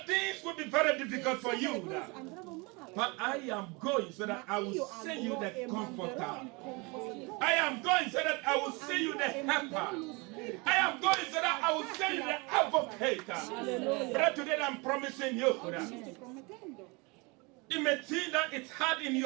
things will be very difficult for you. But I am going so that I will send you the comforter. I am going so that I will send you the helper. I am going so that I will send you the advocate. But today I'm promising you. It may seem that it's hard in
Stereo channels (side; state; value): left; quieter; 27.9 dB